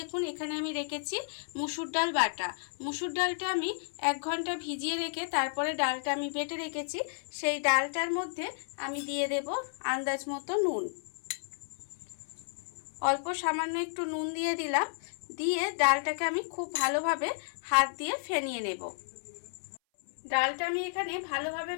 এখানে আমি রেখেছি মুসুর ডাল বাটা। মুসুর ডালটা আমি 1 ঘন্টা ভিজিয়ে রেখে তারপরে ডালটা আমি বেটে রেখেছি। সেই ডালটার মধ্যে আমি দিয়ে দেব আন্দাজ মতো নুন, অল্প সামান্য একটু নুন দিয়ে দিলাম। দিয়ে ডালটাকে আমি খুব ভালোভাবে হাত দিয়ে ফেনিয়ে নেব। ডালটা আমি এখানে ভালোভাবে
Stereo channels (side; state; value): right; silent; 56 dB below the other